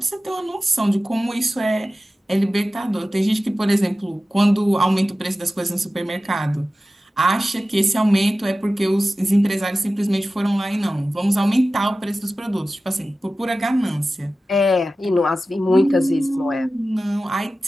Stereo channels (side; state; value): both; normal; correlation 0.95